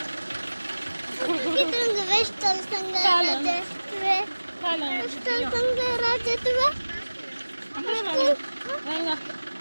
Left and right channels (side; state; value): both; inverted; correlation -1.00